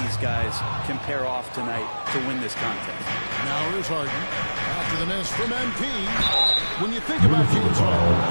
these guys can pair off tonight to win this contest. Now here's Harden. After the miss from MP. When you think about James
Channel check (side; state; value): both; inverted; correlation -1.00